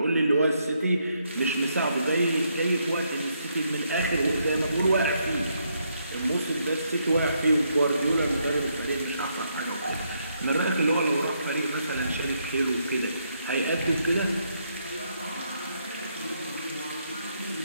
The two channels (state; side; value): inverted; both; correlation -0.76